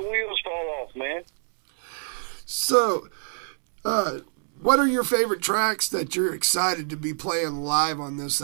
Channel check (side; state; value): left; silent; 61 dB below the other